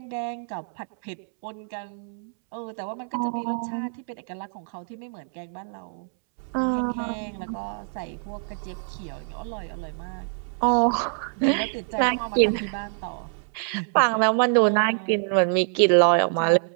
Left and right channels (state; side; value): silent; left; 61 dB below the other